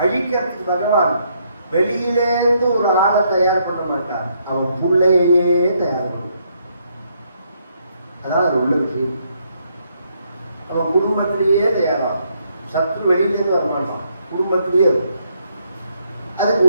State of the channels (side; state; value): both; inverted; correlation -0.73